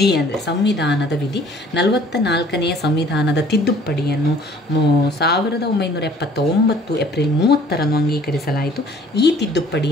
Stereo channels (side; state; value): both; normal; correlation 0.55